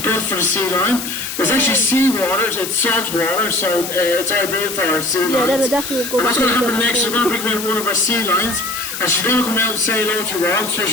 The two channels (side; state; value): left; noise; hiss, 7 dB below the sound